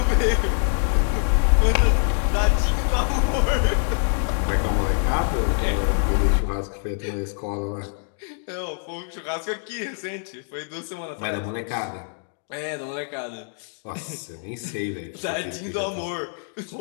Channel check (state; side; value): silent; right; 62 dB below the other